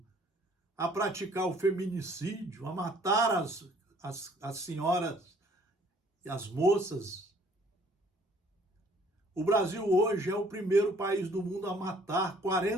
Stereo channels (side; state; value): both; normal; correlation 0.59